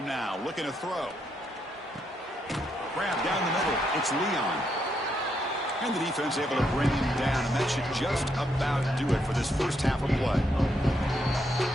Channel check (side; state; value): both; normal; correlation 0.78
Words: now. Looking to throw. Grab down the middle. It's Leon. And the defense able to bring him down. And that should just about do it for this first half of play.